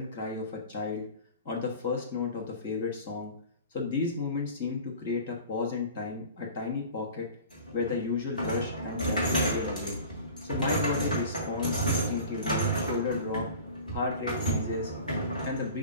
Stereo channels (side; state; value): both; inverted; correlation -0.40